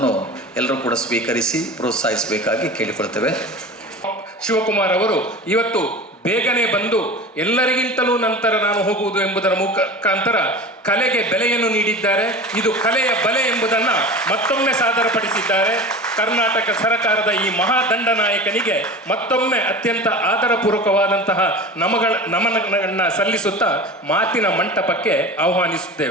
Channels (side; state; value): both; normal; correlation 0.34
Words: ಎಲ್ಲರೂ ಕೂಡ ಸ್ವೀಕರಿಸಿ ಪ್ರೋತ್ಸಾಹಿಸಬೇಕಾಗಿ ಕೇಳಿಕೊಳ್ತೇವೆ. ಶಿವಕುಮಾರ್ ಅವರು ಇವತ್ತು ಬೇಗನೆ ಬಂದು ಎಲ್ಲರಿಗಿಂತಲೂ ನಂತರ ನಾನು ಹೋಗುವುದು ಎಂಬುದರ ಮುಖಾಂತರ ಕಲೆಗೆ ಬೆಲೆಯನ್ನು ನೀಡಿದ್ದಾರೆ. ಇದು ಕಲೆಯ ಬಲೆ ಎಂಬುದನ್ನು ಮತ್ತೊಮ್ಮೆ ಸಾದರಪಡಿಸಿದ್ದಾರೆ. ಕರ್ನಾಟಕ ಸರ್ಕಾರದ ಈ ಮಹಾದಂಡನಾಯಕನಿಗೆ ಮತ್ತೊಮ್ಮೆ ಅತ್ಯಂತ ಆದರಪೂರ್ವಕವಾದಂತಹ ನಮನಗಳನ್ನು ಸಲ್ಲಿಸುತ್ತಾ ಮಾತಿನ ಮಂಟಪಕ್ಕೆ